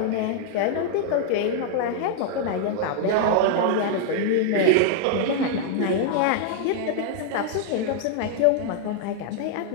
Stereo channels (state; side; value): different; both; correlation -0.01